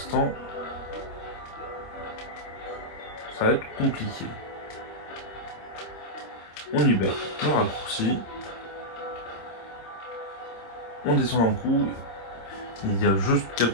ça va être compliqué. On y va. On raccourcit. On descend un coup. Il y a juste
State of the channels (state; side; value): late; right; 26 ms